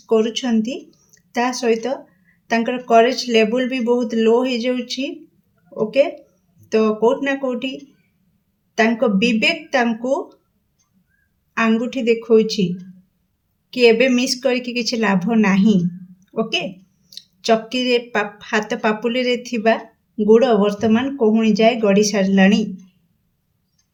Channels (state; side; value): identical; both; correlation 1.00